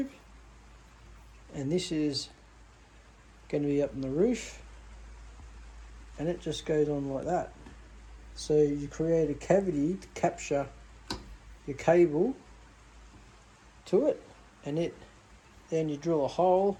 and this is going to be up on the roof, and it just goes on like that. So you create a cavity to capture your cable to it, and then you drill a hole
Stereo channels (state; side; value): identical; both; correlation 1.00